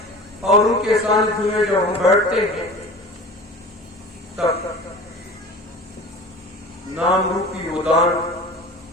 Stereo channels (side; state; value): both; normal; correlation 0.38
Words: और उनके सानिध्य में जब हम बैठते हैं, तब नाम रूपी वो दान,